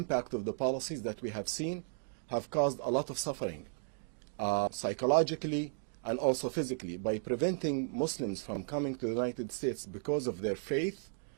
of the policies that we have seen have caused a lot of suffering, psychologically and also physically. By preventing Muslims from coming to the United States because of their faith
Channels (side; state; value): left; silent; digital silence